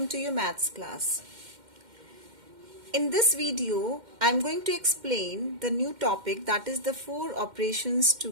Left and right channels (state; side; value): late; left; 2.1 ms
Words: to your maths class. In this video, I am going to explain the new topic, that is the four operations